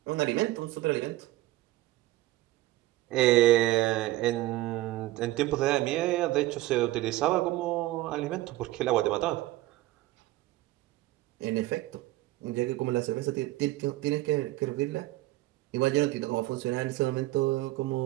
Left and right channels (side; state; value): left; quieter; 17.3 dB